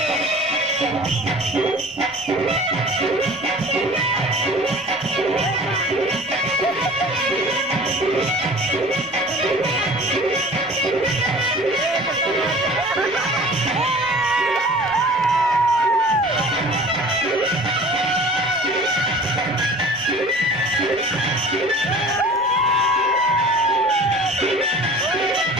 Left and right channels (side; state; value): left; noise; rumble, 30 dB below the sound